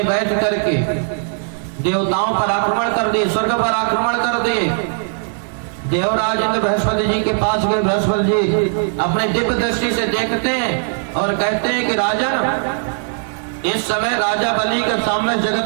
बैठ करके देवताओं पर आक्रमण कर दिए, स्वर्ग पर आक्रमण कर दिए। देवराज इंद्र बृहस्पति जी के पास गए, बृहस्पति जी अपने दिव्य दृष्टि से देखते हैं और कहते हैं कि राजन, इस समय राजा बलि के सामने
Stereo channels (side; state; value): left; silent; digital silence